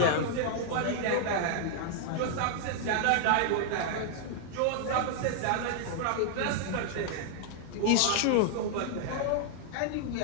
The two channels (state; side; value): different; both; correlation 0.00